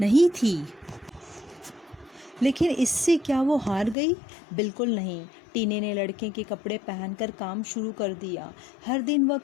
नहीं थी। लेकिन इससे क्या वो हार गई? बिल्कुल नहीं। टीने ने लड़के के कपड़े पहनकर काम शुरू कर दिया। हर दिन वह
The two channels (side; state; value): right; drops out; at 4.0 s